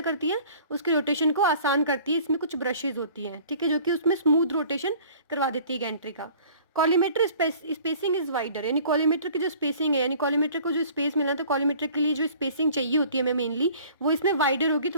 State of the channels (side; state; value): both; inverted; correlation -0.50